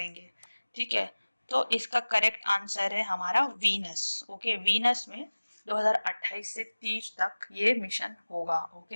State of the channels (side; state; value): both; inverted; correlation -1.00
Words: ठीक है। तो इसका करेक्ट आंसर है हमारा वीनस, ओके। वीनस में 2028 से 30 तक ये मिशन होगा,